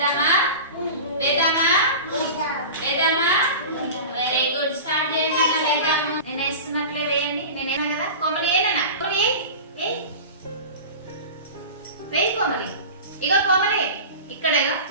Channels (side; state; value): both; inverted; correlation -0.32